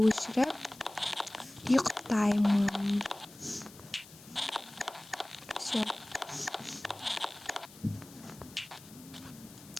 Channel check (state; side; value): noise; left; hiss, 20 dB below the sound